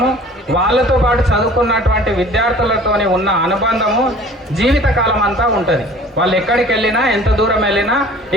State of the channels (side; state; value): both; normal; correlation 0.48